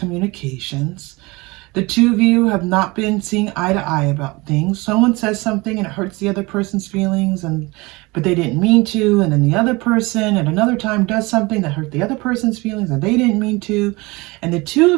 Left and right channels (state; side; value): quieter; left; 23.9 dB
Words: The two of you have not been seeing eye to eye about things. Someone says something and it hurts the other person's feelings, but they didn't mean to. And then the other person at another time does something that hurt the other person's feelings and they didn't mean to. And the two